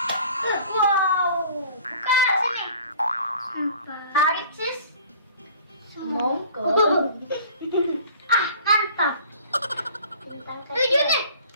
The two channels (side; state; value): both; inverted; correlation -0.48